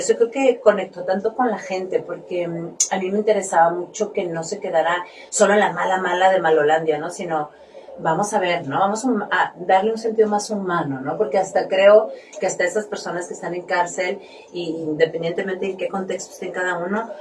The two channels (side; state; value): both; identical; correlation 1.00